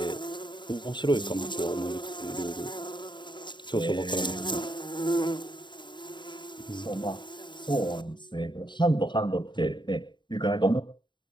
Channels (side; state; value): right; late; 0.22 ms